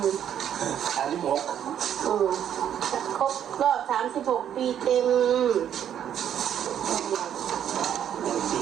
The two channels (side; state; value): left; quieter; 9.7 dB